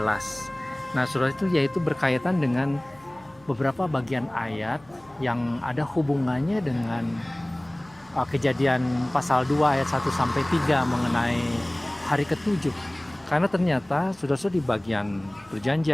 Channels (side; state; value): left; noise; hum, 28 dB below the sound